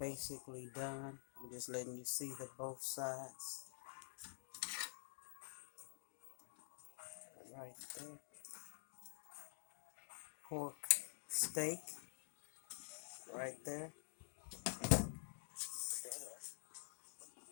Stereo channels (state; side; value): silent; right; digital silence